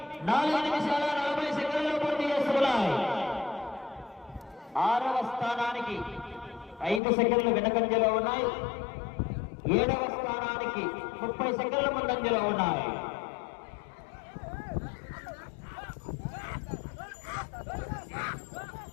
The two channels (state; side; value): drops out; right; at 7.0 s